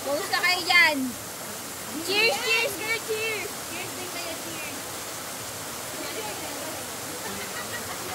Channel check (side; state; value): both; identical; correlation 1.00